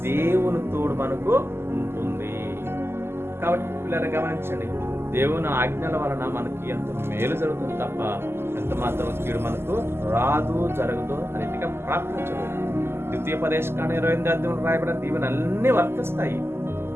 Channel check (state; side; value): late; left; 0.12 ms